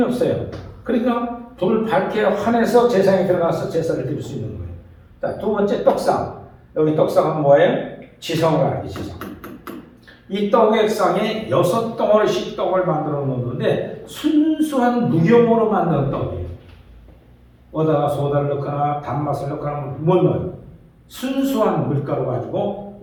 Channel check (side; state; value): both; identical; correlation 1.00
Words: 없어요. 그러니까 불을 밝혀야 환해서 제사장이 들어가서 제사를 드릴 수 있는 거예요. 자, 두 번째 떡상. 여기 떡상은 뭐예요? 지성을 알게, 지성. 이 떡의 상에 6덩어리씩 떡을 만들어 놓는데 순수한 무경으로 만든 떡이에요. 어디다가 소다를 넣거나 단맛을 넣거나 못 넣어요. 순수한 밀가루 가지고